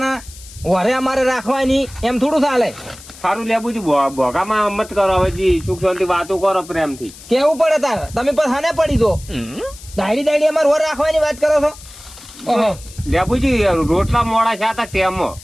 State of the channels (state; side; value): noise; left; hiss, 19 dB below the sound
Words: વરે અમારે રાખવાની એમ થોડું ચાલે સારું લેબુજી ભોગામાં મત કરો હવે જી સુખ શાંતિ વાતો કરો પ્રેમથી કેવું પડે તાર તમે પણ હાને પડી દો દાડી અમારે વર રાખવાની વાત કરો છો ઓહો લેબુજી રોટલા મોડા છે હતા તેમાં